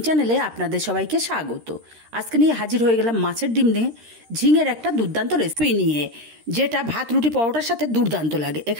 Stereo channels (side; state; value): left; late; 13 ms